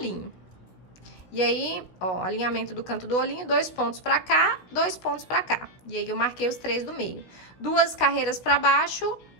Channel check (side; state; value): right; late; 16 ms